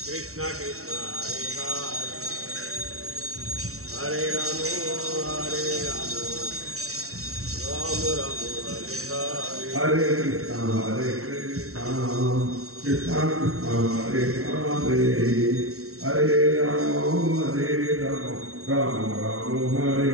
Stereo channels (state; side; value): late; left; 0.63 ms